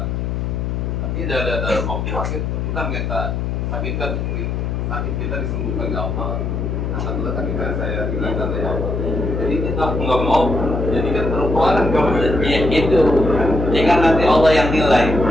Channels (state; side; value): noise; left; hum, 2 dB below the sound